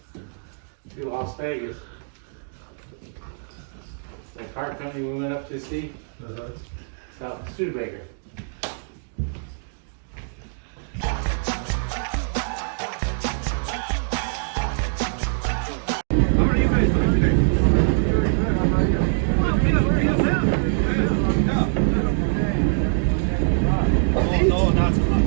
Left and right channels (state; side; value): silent; left; digital silence